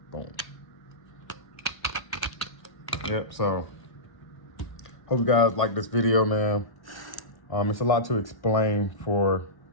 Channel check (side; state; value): right; late; 1.3 ms